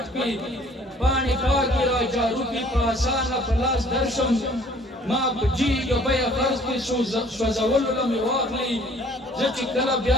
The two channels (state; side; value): normal; both; correlation 0.56